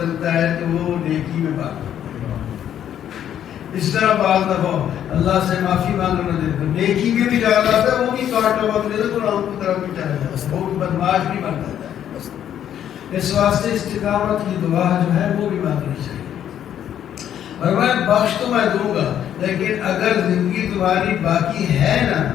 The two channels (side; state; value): right; quieter; 10.2 dB